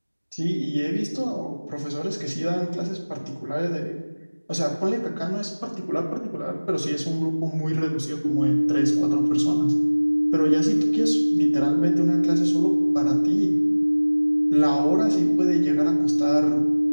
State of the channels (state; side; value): inverted; both; correlation -1.00